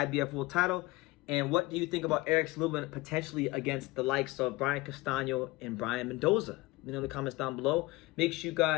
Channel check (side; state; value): right; quieter; 21.1 dB